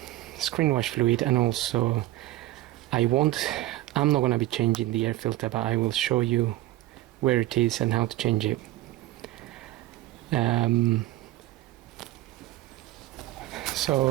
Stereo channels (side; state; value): left; quieter; 16.2 dB